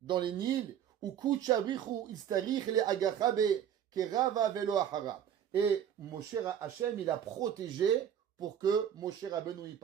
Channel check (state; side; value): quieter; left; 9.4 dB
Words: les Nils, ou Kuchabrichu Istarich le Agachabe, Kerava Velo Ahara. Et Moshe Hachem, il a protégé pour que Moshe Rabbeinu y